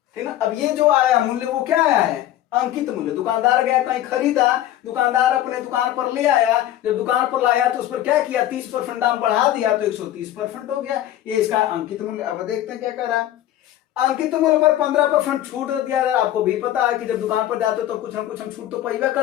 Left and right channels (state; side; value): quieter; right; 13.0 dB